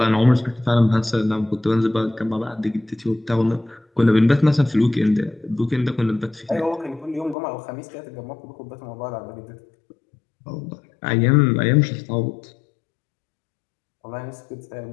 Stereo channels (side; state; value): right; drops out; at 7.4 s